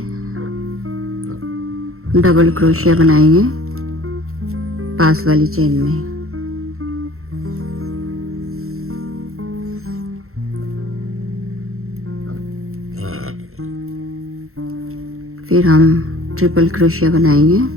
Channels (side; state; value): left; late; 0.62 ms